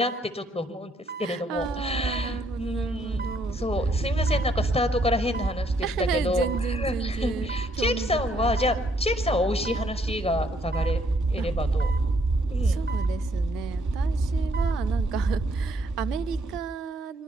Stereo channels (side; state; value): both; normal; correlation 0.69